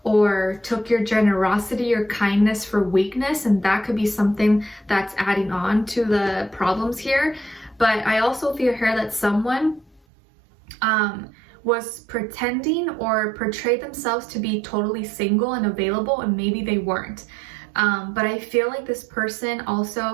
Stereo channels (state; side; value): drops out; left; at 10.0 s